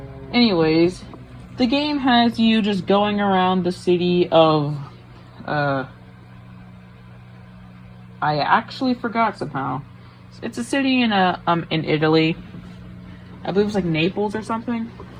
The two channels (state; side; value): identical; both; correlation 1.00